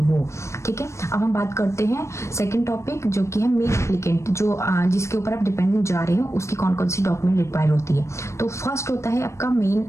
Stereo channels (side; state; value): right; late; 0.14 ms